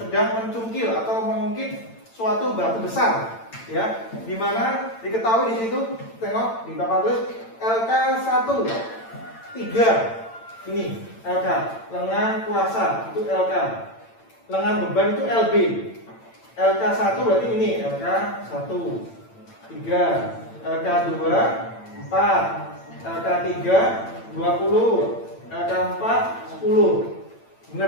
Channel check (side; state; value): right; late; 8.9 ms